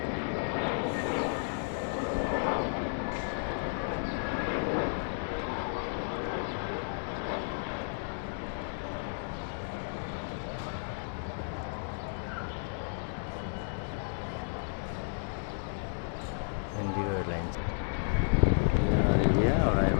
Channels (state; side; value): silent; right; digital silence